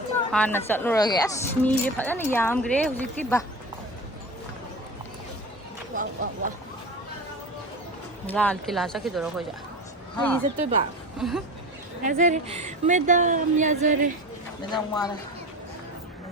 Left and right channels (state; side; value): normal; both; correlation 0.30